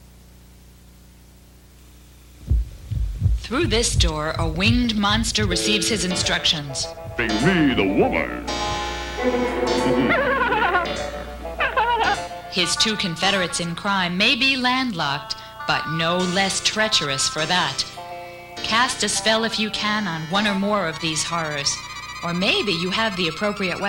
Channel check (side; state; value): both; identical; correlation 1.00